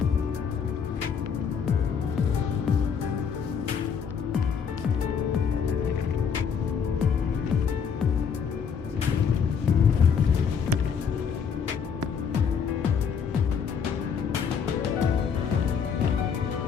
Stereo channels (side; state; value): right; quieter; 6.8 dB